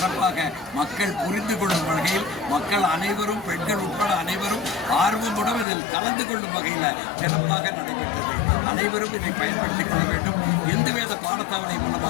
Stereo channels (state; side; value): drops out; right; at 5.7 s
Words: மக்கள் புரிந்து கொள்ளும் வகையில் மக்கள் அனைவரும் பெண்கள் உட்பட அனைவரும் ஆர்வமுடன் இதில் கலந்து கொள்ளும் வகையில் சிறப்பாக நடைபெற்றது. அனைவரும் இதை பயன்படுத்திக் கொள்ள வேண்டும். எந்தவித பாடத்தாவணை